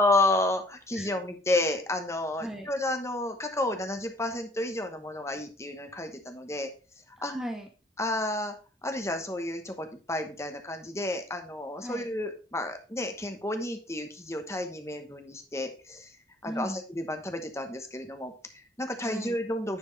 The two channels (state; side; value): normal; both; correlation 0.57